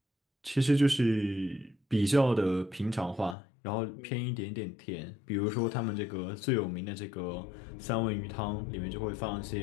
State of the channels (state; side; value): drops out; right; at 3.4 s